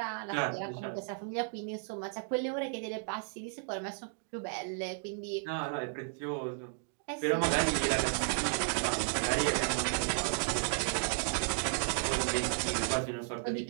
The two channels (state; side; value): silent; left; 55 dB below the other